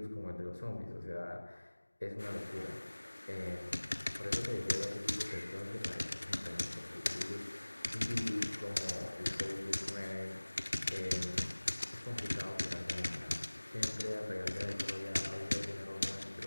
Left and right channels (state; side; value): inverted; both; correlation -1.00